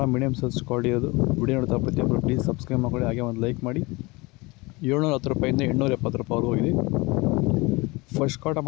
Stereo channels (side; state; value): right; quieter; 24.4 dB